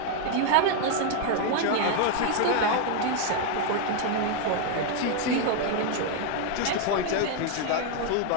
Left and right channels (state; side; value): different; both; correlation 0.00